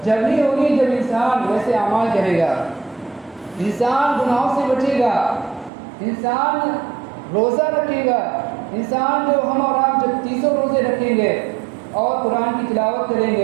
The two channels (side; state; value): left; drops out; at 5.7 s